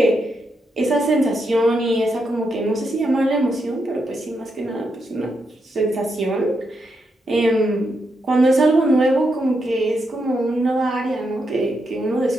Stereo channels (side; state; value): both; normal; correlation 0.82